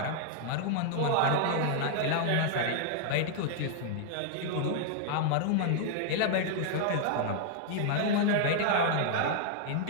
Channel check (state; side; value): different; both; correlation 0.00